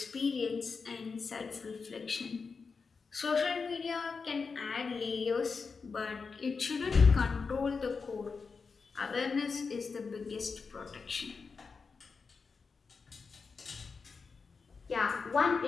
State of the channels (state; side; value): quieter; right; 4.9 dB